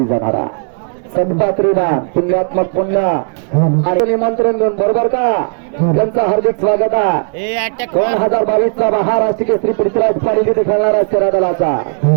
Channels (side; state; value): left; silent; digital silence